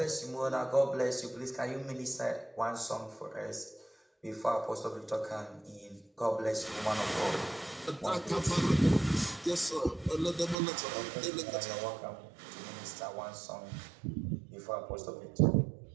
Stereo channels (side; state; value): left; drops out; at 10.6 s